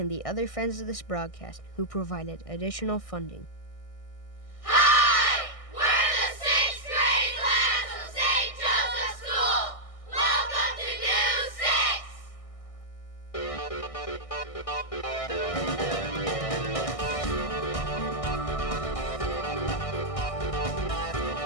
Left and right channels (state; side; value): late; right; 1.6 ms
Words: the other friends of this broadcast who provided additional funding. Hi! We're the sixth grade class of St. Joseph's School. Welcome to News 6.